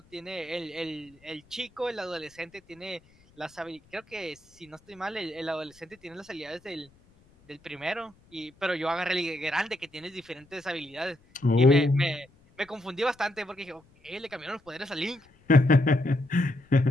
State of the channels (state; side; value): noise; left; rumble, 30 dB below the sound